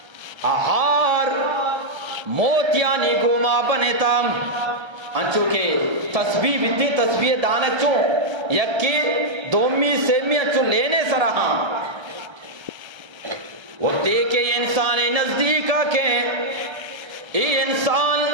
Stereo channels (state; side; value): late; left; 1.3 ms